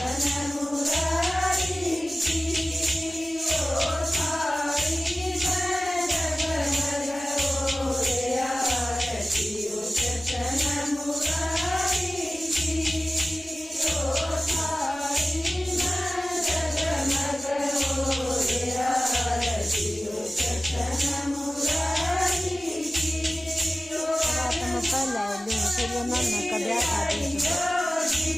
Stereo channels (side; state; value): both; normal; correlation 0.97